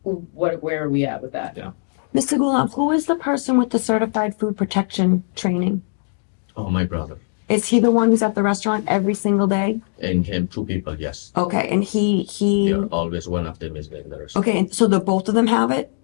Where are we at with that? Yeah. Mr. Gulam, who is the person with the certified food protection training? Oh, my brother. Is he the one who's at the restaurant every single day? And him, 2 people, yes. Okay, and he. They're always one of them is in the restaurant. Okay, and so both of them have it?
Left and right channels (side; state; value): right; silent; 65 dB below the other